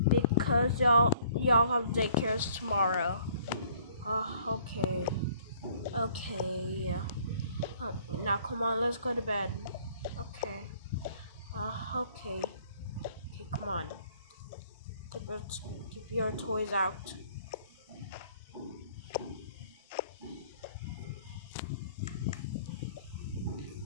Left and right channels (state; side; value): inverted; both; correlation -0.58